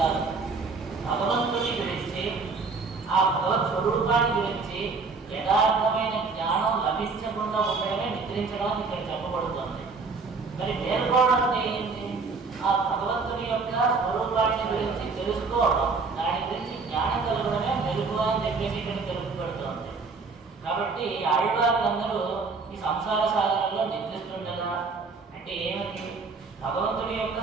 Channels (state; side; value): quieter; left; 4.4 dB